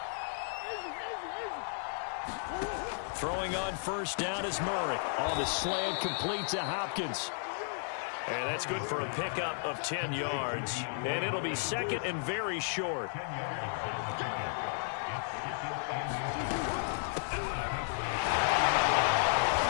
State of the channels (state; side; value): silent; right; digital silence